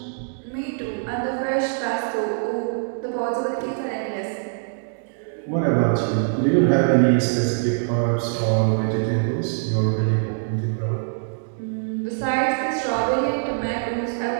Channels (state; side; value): silent; left; digital silence